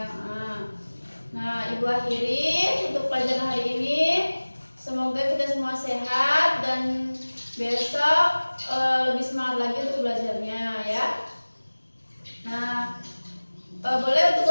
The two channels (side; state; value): both; inverted; correlation -1.00